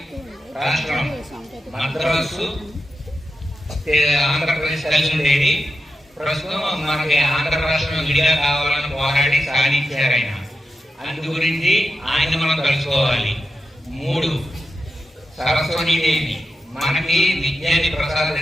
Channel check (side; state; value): both; normal; correlation 0.90